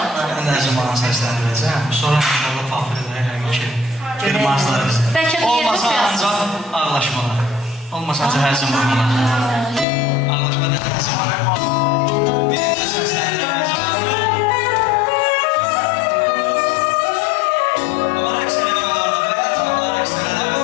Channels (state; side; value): drops out; right; at 9.9 s